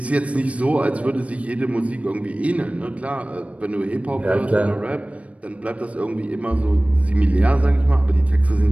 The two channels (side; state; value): left; late; 0.065 ms